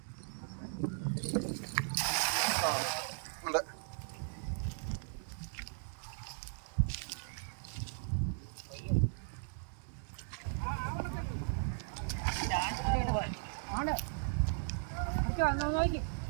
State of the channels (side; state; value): left; silent; digital silence